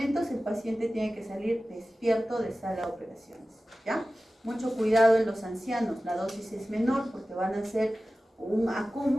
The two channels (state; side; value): normal; both; correlation 0.95